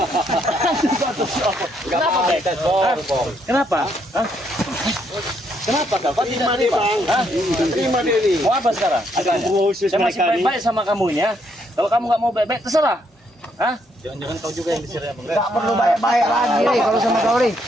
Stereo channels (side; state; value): both; normal; correlation 0.73